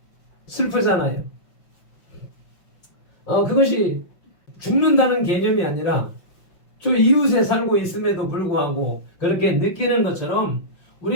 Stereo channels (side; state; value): right; late; 5.6 ms